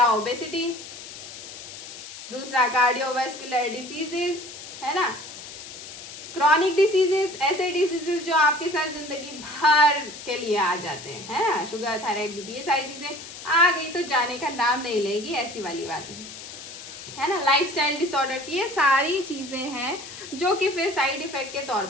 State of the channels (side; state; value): left; noise; hiss, 13 dB below the sound